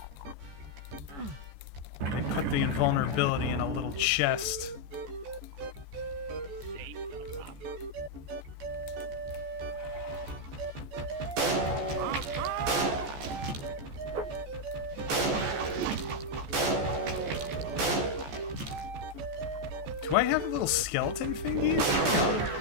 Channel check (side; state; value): left; late; 14 ms